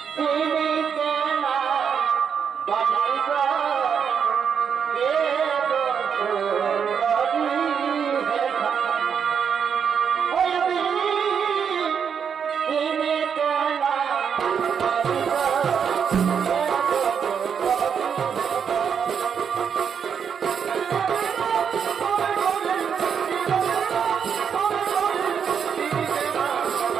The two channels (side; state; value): left; quieter; 7.2 dB